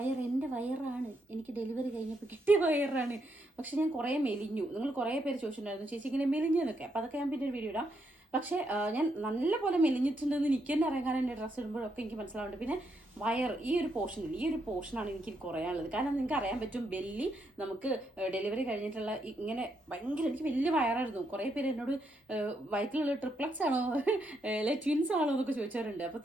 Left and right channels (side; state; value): both; normal; correlation 0.78